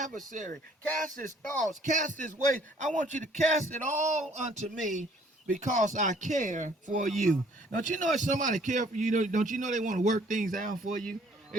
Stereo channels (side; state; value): both; normal; correlation 0.59